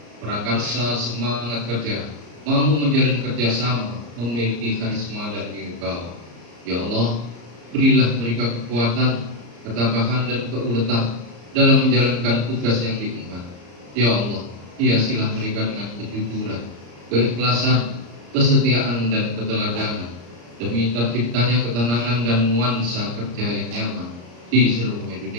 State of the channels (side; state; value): left; late; 34 ms